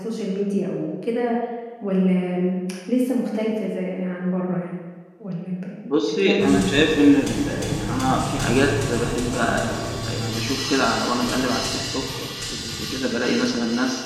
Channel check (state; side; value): identical; both; correlation 1.00